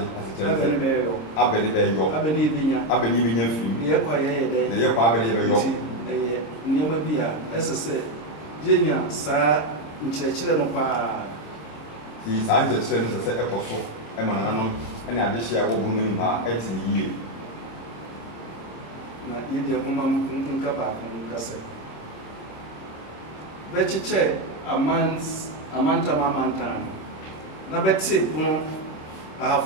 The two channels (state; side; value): late; right; 26 ms